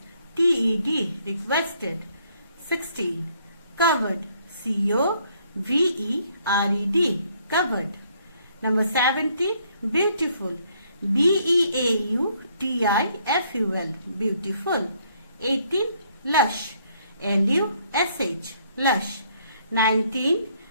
Requested. 16. Covered. C-O-V-E-R-E-D. Covered. Number 17. Beautiful. B-E-A-U-T-I-F-U-L. Beautiful. 18. Lush. L-U-S-H. Lush. 19.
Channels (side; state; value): both; inverted; correlation -0.67